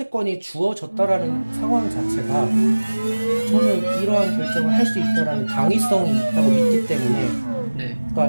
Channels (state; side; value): inverted; both; correlation -1.00